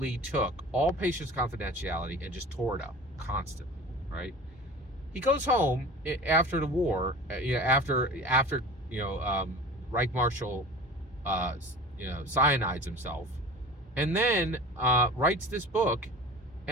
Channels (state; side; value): normal; both; correlation 0.38